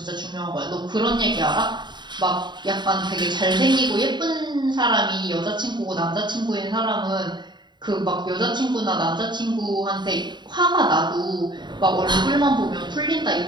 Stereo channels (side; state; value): left; late; 0.22 ms